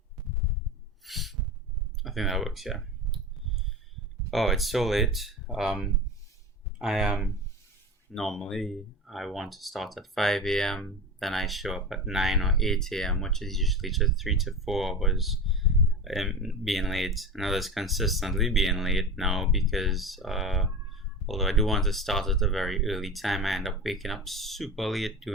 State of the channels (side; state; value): both; normal; correlation 0.28